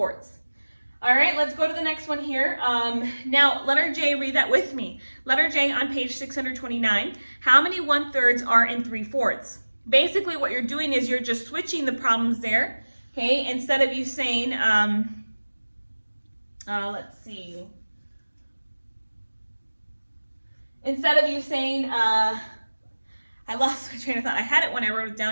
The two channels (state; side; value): inverted; both; correlation -1.00